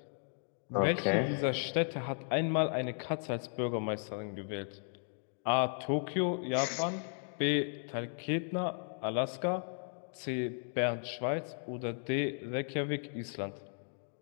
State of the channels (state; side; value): silent; right; 54 dB below the other